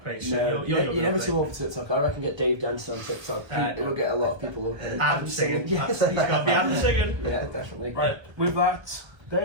page. So No, you're never too old for TikTok. I reckon get Dave dancing on TikTok. It will get a lot of people. Adam singing. Yes, He's got to be Adam singing. Yeah, definitely. Right, with that,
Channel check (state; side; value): late; left; 1.3 ms